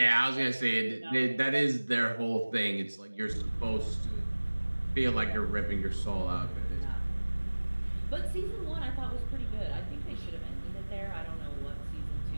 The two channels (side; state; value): both; inverted; correlation -1.00